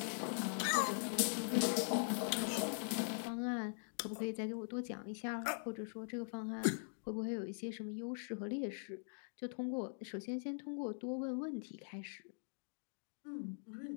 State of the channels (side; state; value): right; silent; digital silence